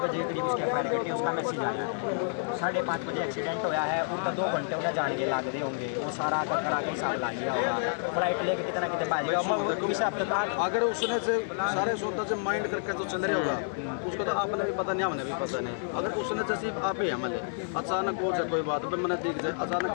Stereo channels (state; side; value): silent; right; 56 dB below the other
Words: बजे करीब उसके फायर कटी, उसका मैसेज आया है 5:30 बजे एक्सीडेंट होया है, उनका 2 घंटे उन्हें जान के लाग रहे होंगे, वो सारा करा के हिसाब ला लिया होगा, फ्लाइट लेके कितना कितने बाजेगा। अगर उसने से सारे सोचता से माइंड करके तो चल रहे होगा उसको तो आपने भी पता नहीं हमने भी पता नहीं, अगर उसने जैसे आप ही हमले अचानक हो जाए कोई बात पे मैंने देख जाए अचानक